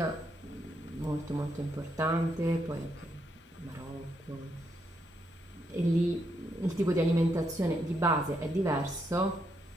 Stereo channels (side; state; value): both; normal; correlation 0.78